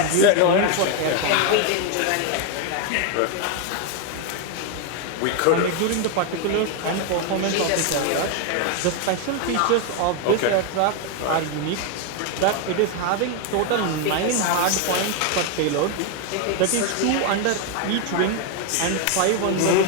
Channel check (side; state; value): both; different; correlation 0.01